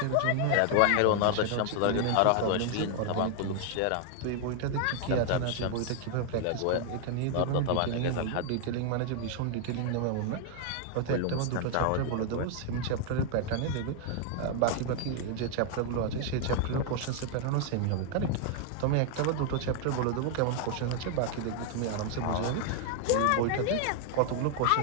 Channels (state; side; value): different; both; correlation 0.00